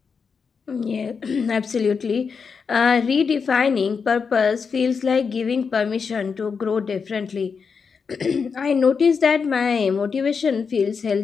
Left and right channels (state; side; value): quieter; right; 5.7 dB